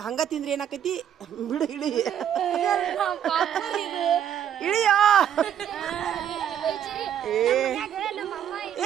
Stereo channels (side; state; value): left; quieter; 9.6 dB